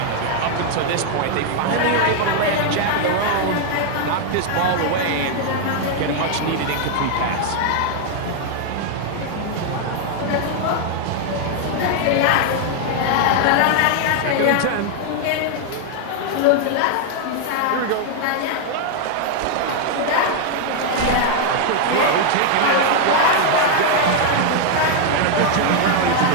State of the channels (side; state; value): both; different; correlation 0.00